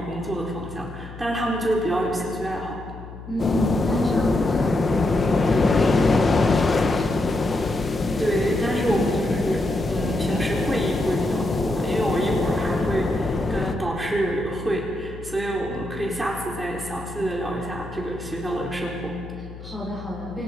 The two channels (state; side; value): noise; left; hum, 14 dB below the sound